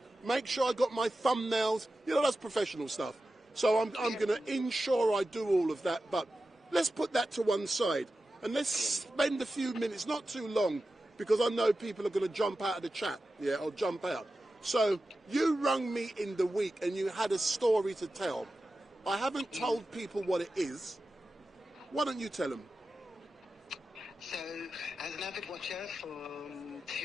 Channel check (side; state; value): both; normal; correlation 0.93